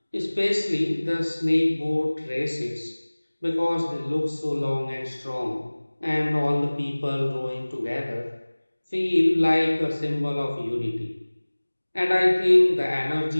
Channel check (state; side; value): inverted; both; correlation -1.00